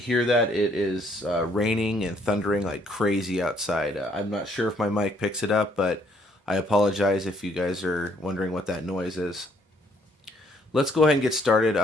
that, it is raining and thundering like crazy outside. I'm not sure if my mic picks it up, but I apologize if you guys are wondering what that noise is. Let's go ahead and get started.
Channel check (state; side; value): normal; both; correlation 0.66